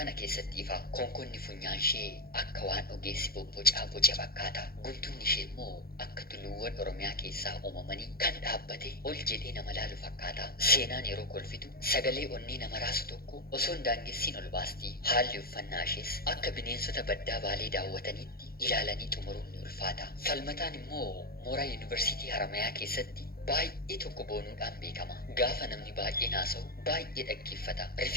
keessatti ifa konkonni funyaan ishee akka waan ogeessi bobbocaa boce fakkaata guntunni ishee immoo akka tulluuwwan oromiyaa keessaa uumamanii kan dhaabbate ol jedhee nama laalu fakkaata seenaan yeroo kolfitu sagalee onnee nama raasu tokko osoo hin daangessiin ol baasti haalli uffannaa ishees akka bineensota baddaa baalee daawwataniitti ilaalanii xumuruun ni ulfaata falmataan immoo mooraa yuunivarsiitii Haramayaa keessatti baay'ee tokko boonuudhaan beekama gaafa namni baay'ee naasa'u baay'ee dhaggeeffata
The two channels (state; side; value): late; right; 0.44 ms